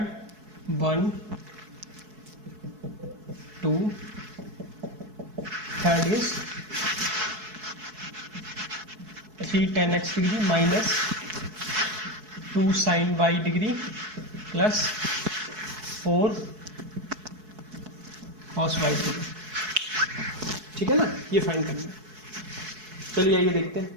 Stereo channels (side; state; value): left; late; 4.7 ms